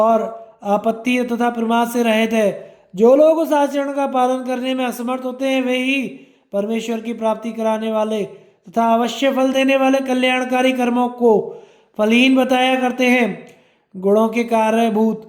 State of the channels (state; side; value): identical; both; correlation 1.00